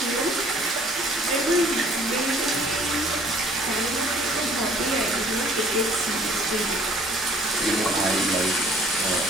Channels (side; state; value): both; normal; correlation 0.57